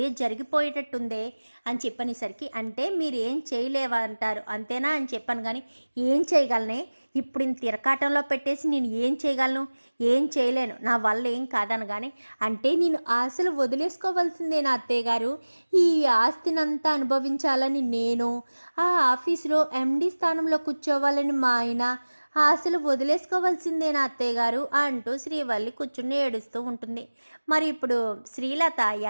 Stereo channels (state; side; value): inverted; both; correlation -1.00